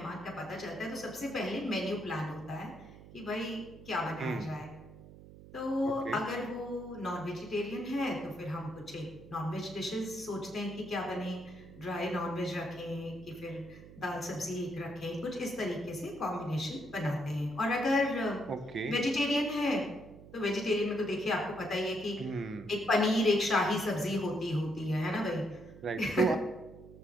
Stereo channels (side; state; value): right; noise; hum, 17 dB below the sound